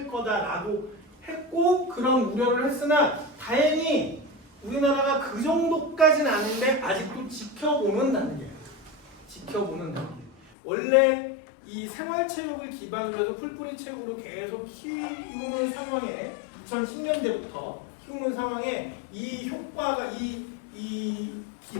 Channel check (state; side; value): drops out; right; at 10.5 s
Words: 거다라고 했고, 그런 우려를 했으나 다행히 우리나라가 그 정도까지는 아닌데 아직도 지켜보는 단계예요. 지켜보는 단계. 원래 이 생활체육을 기반으로 해서 풀뿌리 체육으로 계속 키우는 상황에 2010년대부터 키우는 상황에 이 효과가 이